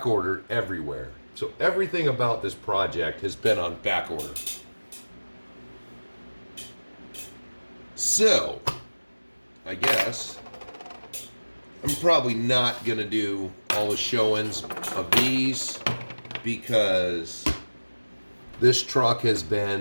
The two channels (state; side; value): inverted; both; correlation -1.00